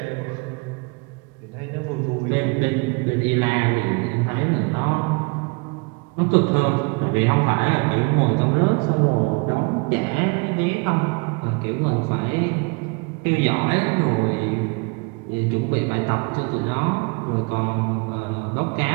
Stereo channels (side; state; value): left; quieter; 30.3 dB